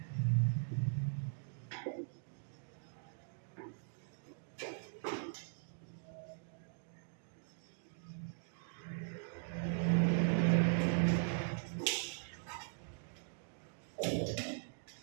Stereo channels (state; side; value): silent; left; digital silence